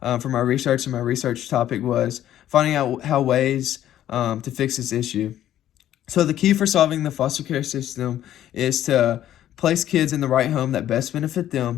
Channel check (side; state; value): right; quieter; 12.0 dB